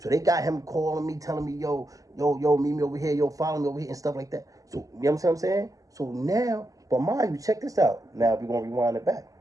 they got him calling me, telling me, yo, meet me over here, yo, follow me over here and stuff like that. So, you know what I'm saying? So now, but mind you, check this out. Now we're going to rewind it back.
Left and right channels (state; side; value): late; left; 0.17 ms